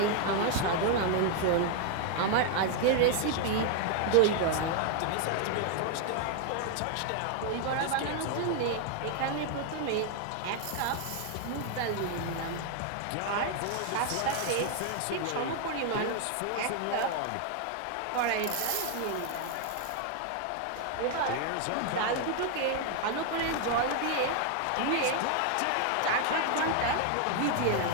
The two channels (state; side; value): different; both; correlation 0.00